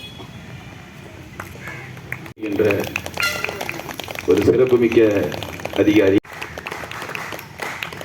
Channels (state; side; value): identical; both; correlation 1.00